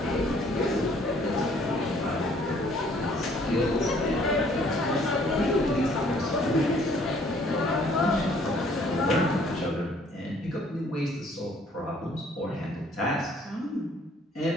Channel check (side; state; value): both; normal; correlation 0.60